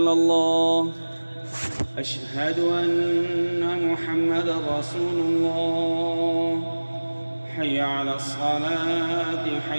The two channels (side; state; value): both; inverted; correlation -1.00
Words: الله. أشهد أن محمدا رسول الله. حي على الصلاة